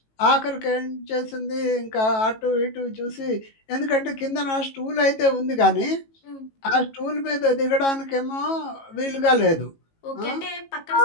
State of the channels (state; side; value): late; right; 18 ms